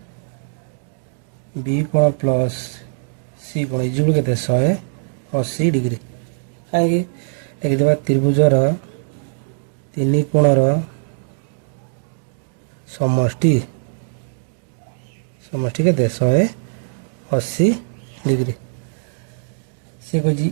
बी कोण प्लस सी कोण इक्वल केते 180 डिग्री। कहीं लिखिदेबा त्रिभुजर 3 कोणर समष्टि केते 180 डिग्री। से कही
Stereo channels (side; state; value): left; silent; digital silence